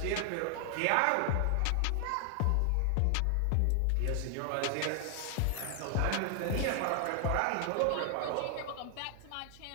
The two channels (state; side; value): different; both; correlation 0.00